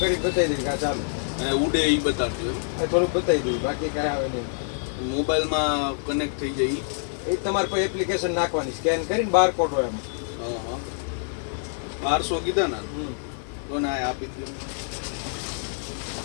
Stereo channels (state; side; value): silent; right; 61 dB below the other